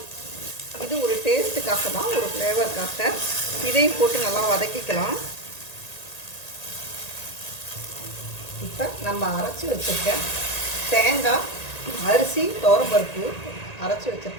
இது ஒரு டேஸ்ட்டுக்காக தான், ஒரு ஃப்ளேவருக்காக, இதையும் போட்டு நல்லா வதக்கிக்கலாம். இப்போ நம்ம அரைச்சி வச்சுருக்க தேங்காய், அரிசி, துவரம்பருப்பு அரைச்சி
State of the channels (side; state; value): right; late; 1.8 ms